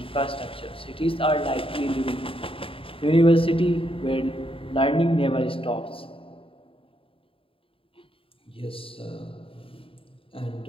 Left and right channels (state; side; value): late; right; 0.26 ms